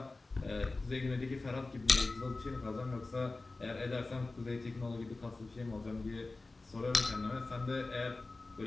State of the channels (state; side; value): quieter; right; 3.3 dB